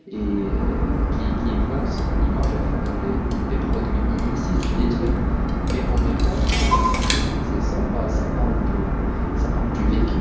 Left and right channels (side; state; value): both; identical; correlation 1.00